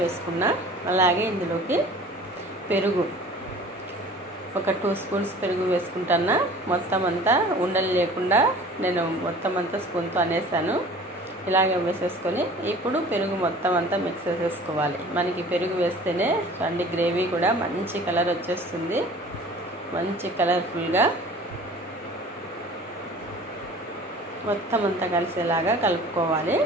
వేసుకున్నా. అలాగే ఇందులోకి పెరుగు ఒక 2 స్పూన్స్ పెరుగు వేసుకుంటున్నా. మొత్తం అంతా ఉండలు లేకుండా నేను మొత్తం అంతా స్పూన్తో అనేసాను. ఇలాగే వేసేసుకొని ఇప్పుడు పెరుగు మొత్తం అంతా మిక్స్ చేసేసుకోవాలి. మనకి పెరుగు వేస్తేనే చూడండి గ్రేవీ కూడా మంచి కలర్ వచ్చేస్తుంది, మంచి కలర్ఫుల్గా మొత్తం అంతా కలిసేలాగా కలుపుకోవాలి.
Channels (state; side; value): normal; both; correlation 0.45